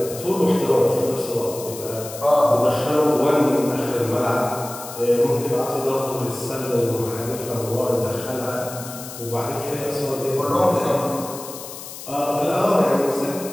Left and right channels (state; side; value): noise; left; hiss, 12 dB below the sound